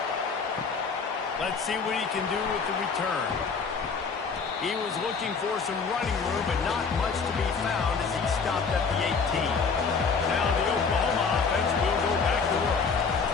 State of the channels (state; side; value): quieter; right; 5.2 dB